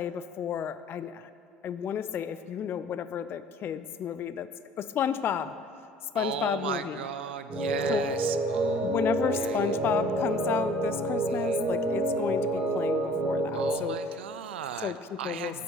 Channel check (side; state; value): both; normal; correlation 0.51